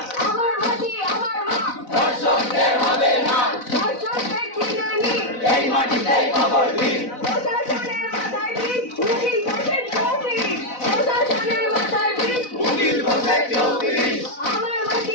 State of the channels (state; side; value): late; right; 4.0 ms